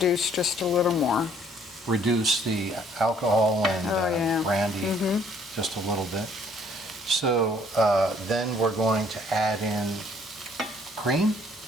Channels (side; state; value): both; normal; correlation 0.61